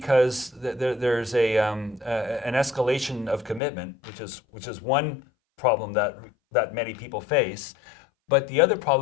there's an escalation of commitment, which is one problem that many people face. But the other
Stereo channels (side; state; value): right; drops out; at 3.6 s